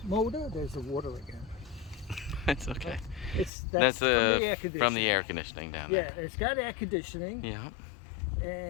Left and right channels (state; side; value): drops out; right; at 3.5 s